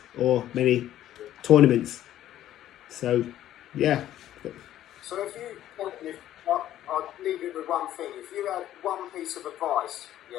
or many tournaments. So, yeah. So I'll leave it with one thing. If you had one piece of advice, you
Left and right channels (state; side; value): quieter; right; 12.5 dB